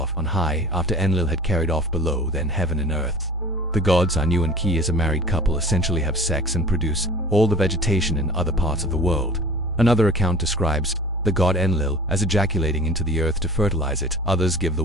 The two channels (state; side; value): normal; both; correlation 0.42